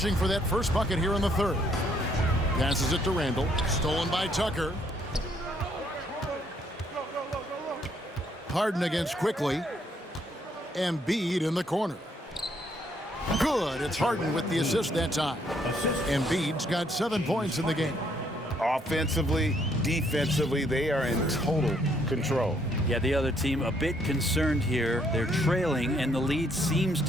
for that first bucket here in the third. Passes it to Randle. Stolen by Tucker. Harden against Quickly. Embiid in the corner. Good. It's Harden with the assist that time. Embiid's got 7 points in the game. Offensively, defensively, they are in total control. Yeah, the other team a bit concerned here. They're trailing, and the lead seems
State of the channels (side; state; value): both; normal; correlation 0.69